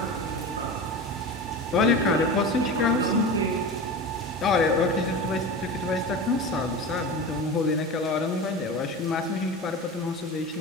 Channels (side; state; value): both; normal; correlation 0.29